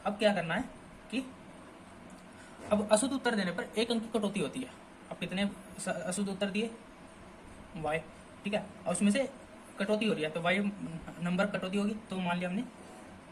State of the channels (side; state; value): both; identical; correlation 1.00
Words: अब क्या करना है कि अब अशुद्ध उत्तर देने पर 1 अंक की कटौती होती है। अब कितने अशुद्ध उत्तर दिए y। ठीक है, और उसमें से कटौती हो रही है तो y नंबर कटौती होगी, तो मान लिया हमने